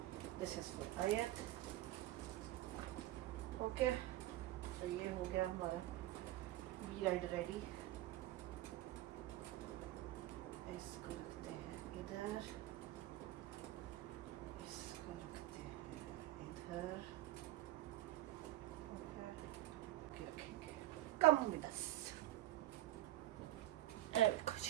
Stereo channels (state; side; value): quieter; left; 15.4 dB